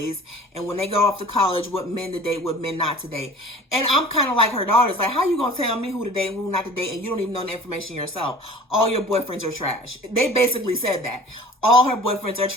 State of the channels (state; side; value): normal; both; correlation 0.44